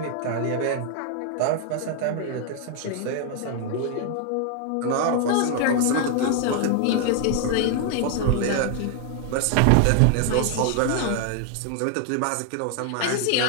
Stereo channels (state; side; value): different; both; correlation 0.00